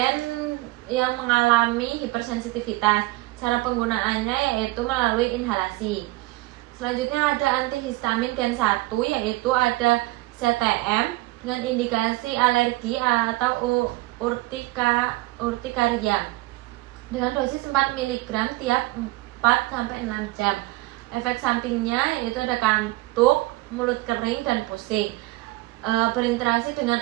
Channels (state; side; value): quieter; left; 20.6 dB